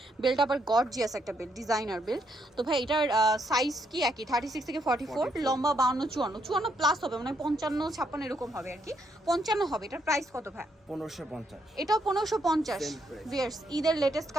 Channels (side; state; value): both; normal; correlation 0.75